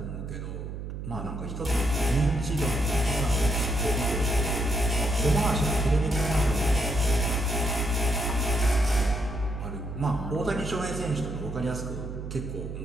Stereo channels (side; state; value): right; noise; hum, 7 dB below the sound